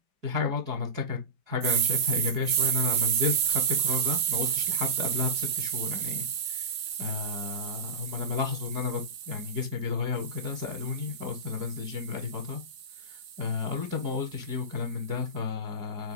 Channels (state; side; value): late; left; 5.4 ms